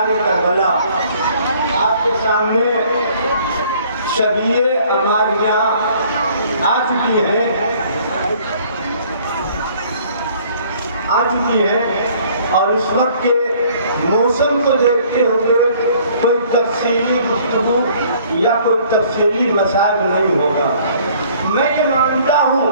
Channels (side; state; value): both; inverted; correlation -0.57